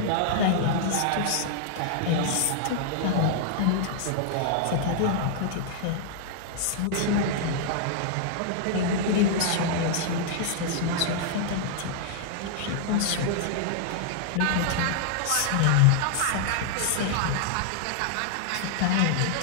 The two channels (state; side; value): different; both; correlation -0.01